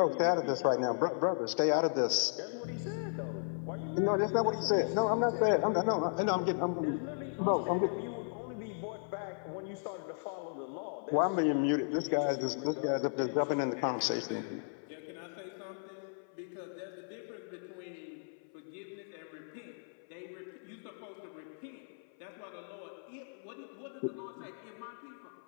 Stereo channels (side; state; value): right; silent; 54 dB below the other